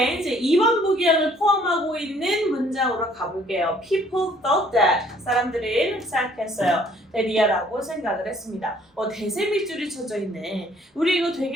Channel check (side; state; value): both; normal; correlation 0.60